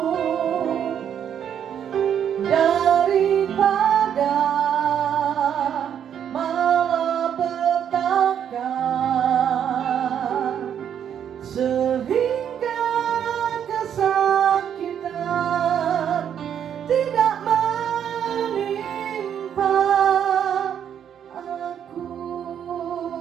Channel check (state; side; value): quieter; left; 8.9 dB